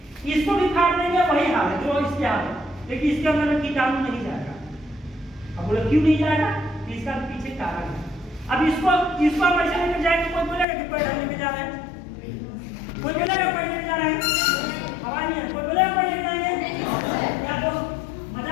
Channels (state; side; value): drops out; right; at 10.7 s